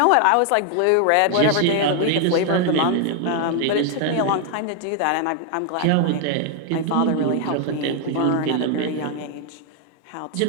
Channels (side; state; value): both; different; correlation 0.00